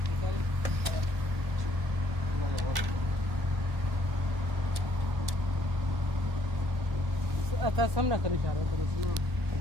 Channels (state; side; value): late; left; 1.1 ms